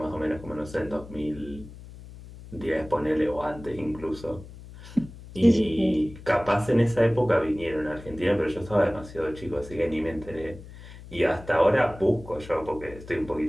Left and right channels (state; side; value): noise; left; hum, 16 dB below the sound